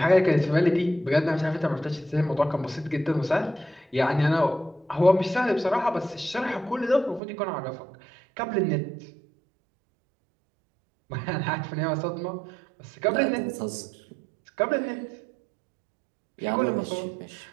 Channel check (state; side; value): drops out; left; at 7.2 s